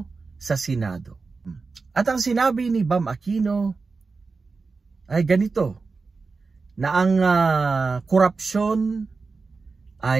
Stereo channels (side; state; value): left; quieter; 4.3 dB